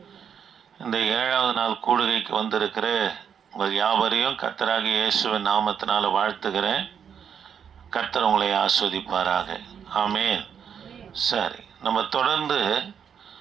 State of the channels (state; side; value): quieter; left; 7.7 dB